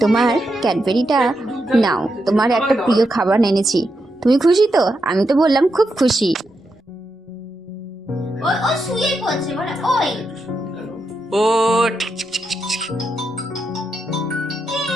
তোমার ক্যাডবেরিটা নাও, তোমার একটা প্রিয় খাবার এনেছি, তুমি খুশি তো? আমি তো বললাম খুব খুশি। ও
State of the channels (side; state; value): both; normal; correlation 0.84